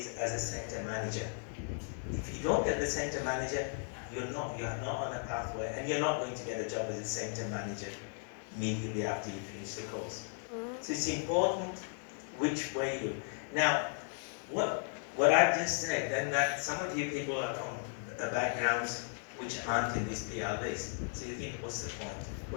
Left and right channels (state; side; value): silent; right; 54 dB below the other